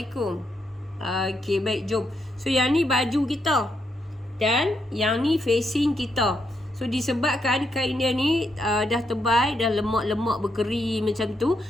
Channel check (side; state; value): both; normal; correlation 0.80